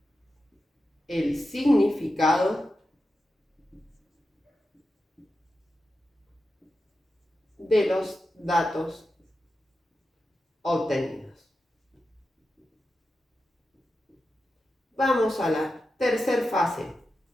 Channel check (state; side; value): normal; both; correlation 0.90